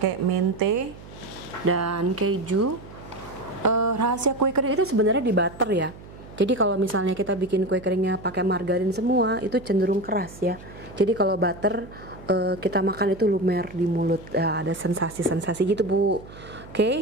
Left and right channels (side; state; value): right; noise; hum, 18 dB below the sound